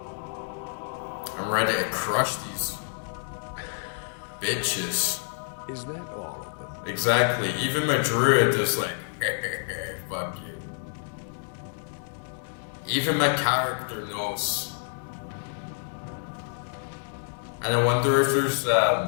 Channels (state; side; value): silent; right; digital silence